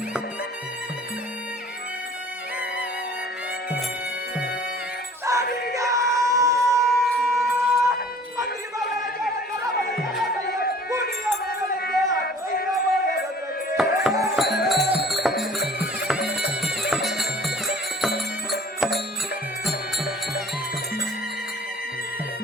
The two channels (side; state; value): both; normal; correlation 0.50